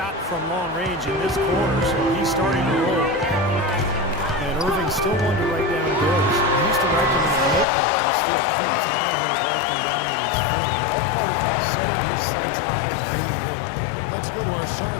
from long range in this quarter, so he's starting to roll. And Irving's still one to write down goals. He used to write them in a notebook, and he still keeps. Now he'll write them down on his phone. All part of setting his sights high and dreaming big. Let's go to our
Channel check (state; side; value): drops out; right; at 7.7 s